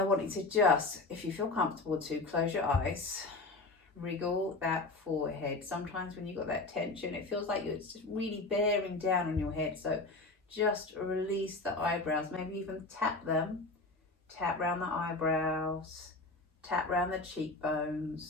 want you to just, if you feel comfortable to, close your eyes, wriggle that forehead. Sometimes when you've got that tension, it feels like it's just really bearing down on your head. So just release the eyebrows, maybe even tap them. Tap around the eyebrows, tap around the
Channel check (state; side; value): quieter; right; 3.3 dB